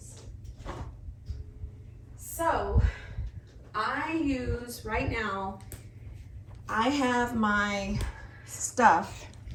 So I use, right now, I have my stuff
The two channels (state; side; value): identical; both; correlation 1.00